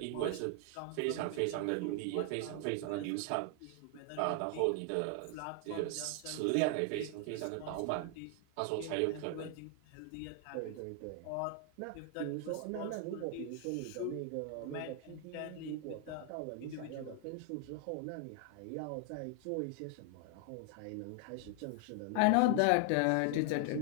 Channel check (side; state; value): both; different; correlation 0.00